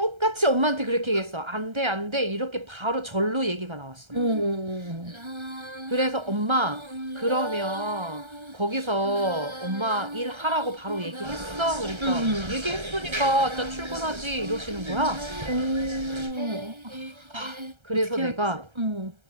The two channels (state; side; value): late; left; 1.3 ms